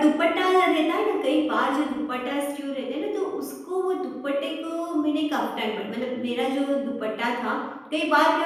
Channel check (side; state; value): both; identical; correlation 1.00